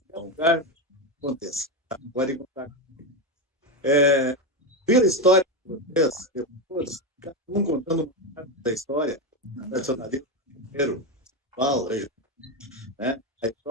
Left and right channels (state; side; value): normal; both; correlation 0.12